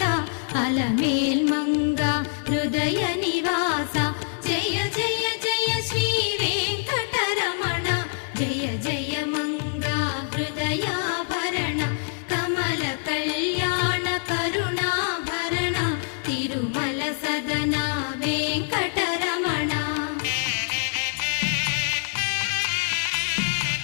అలమేల్ మంగ హృదయ నివాస జయ జయ జయ శ్రీ వెంకటరమణ జయ జయ మంగ హృదయాభరణ కమల కళ్యాణ కరుణాభరణ తిరుమల సదన వెంకటరమణ.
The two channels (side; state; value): right; silent; digital silence